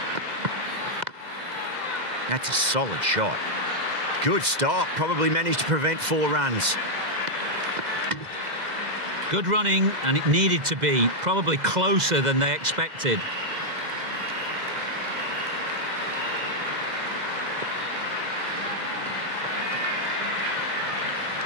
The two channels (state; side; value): late; left; 2.0 ms